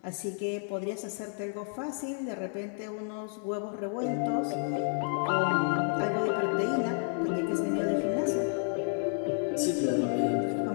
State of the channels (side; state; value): right; silent; 57 dB below the other